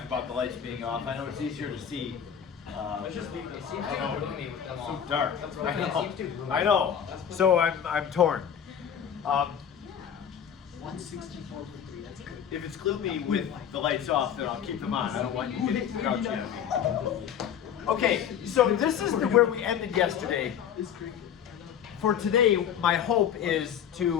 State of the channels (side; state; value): right; quieter; 8.7 dB